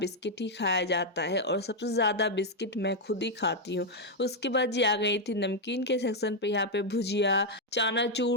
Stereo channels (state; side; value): normal; both; correlation 0.01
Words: ही खाया जाता है और सबसे ज़्यादा बिस्किट मैं खुद ही खाती हूँ। उसके बाद जी आ गई थी नमकीन के सेक्शन पे। यहाँ पे भुजिया,